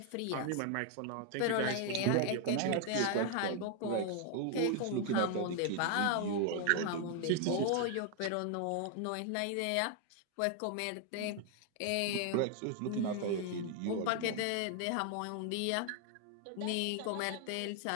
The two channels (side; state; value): both; different; correlation 0.00